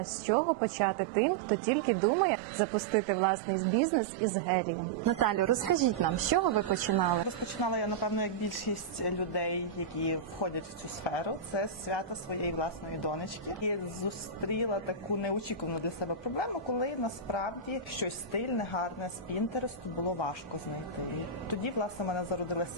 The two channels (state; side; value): quieter; left; 4.9 dB